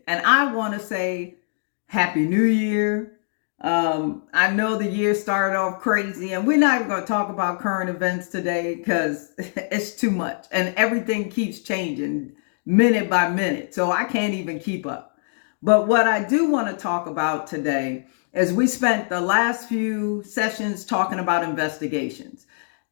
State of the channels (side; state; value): right; silent; digital silence